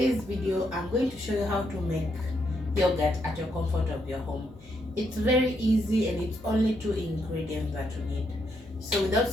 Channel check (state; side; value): noise; left; hum, 23 dB below the sound